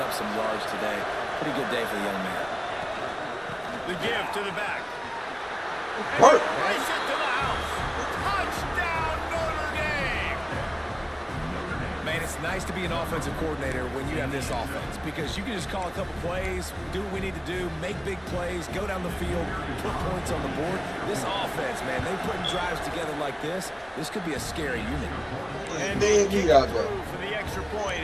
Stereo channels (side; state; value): both; identical; correlation 1.00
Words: up some yards today. Pretty good day for the young man. The give to the back. Work. Race it to the house. Touchdown, Notre Dame. Man, it's nice to be an offensive coordinator when you have this offense, because you can just call a couple plays, do what we need to do, make big plays, go down the field, put points on the board. This offense, man, they putting drives together like this could be a scary unit. And they kick out through there. for the extra point,